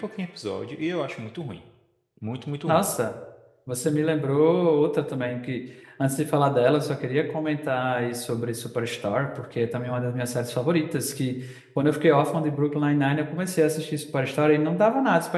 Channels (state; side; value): identical; both; correlation 1.00